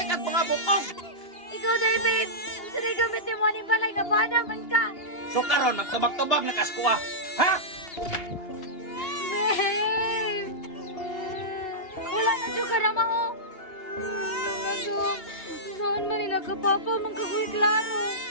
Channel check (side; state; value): right; late; 2.8 ms